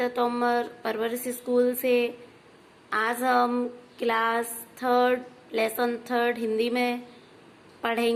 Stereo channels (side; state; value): both; identical; correlation 1.00